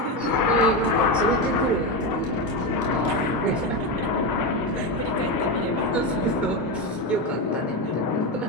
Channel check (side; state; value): both; normal; correlation 0.14